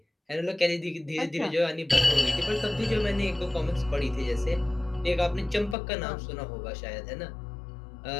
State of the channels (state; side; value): drops out; right; at 5.8 s